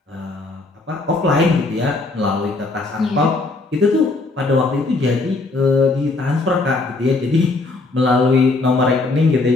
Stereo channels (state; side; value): quieter; right; 3.4 dB